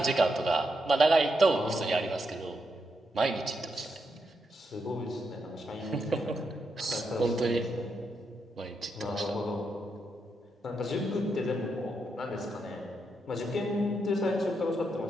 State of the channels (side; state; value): both; normal; correlation 0.82